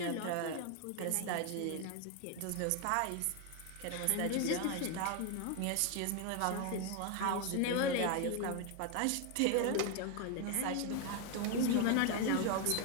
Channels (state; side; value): different; both; correlation 0.01